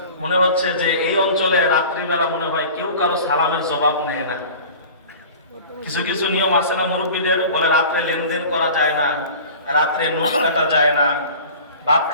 মনে হচ্ছে যে এই অঞ্চলে রাত্রিবেলা মনে হয় কেউ কারো সালামের জবাব নেয় না। কিছু কিছু নিয়ম আছে না মুরব্বীদের, বলে রাত্রে লেনদেন করা যায় না, রাত্রে নোট কাটা যায় না, ভাত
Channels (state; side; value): inverted; both; correlation -0.40